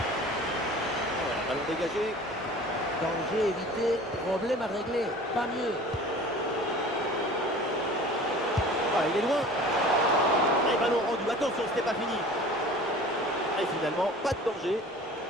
Ballon dégagé. Danger évité, problème à régler, pas mieux. Ah, il est loin. Et ballon rendu, attention, c'était pas fini. Et finalement, pas de danger.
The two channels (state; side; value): normal; both; correlation 0.43